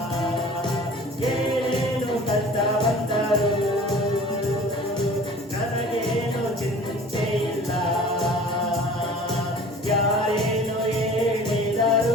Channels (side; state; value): both; normal; correlation 0.45